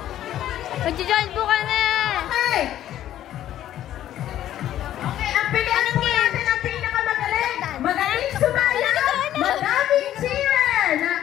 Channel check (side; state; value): right; quieter; 12.2 dB